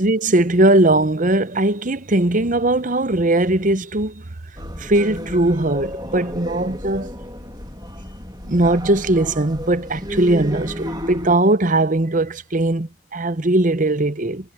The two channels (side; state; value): both; normal; correlation 0.41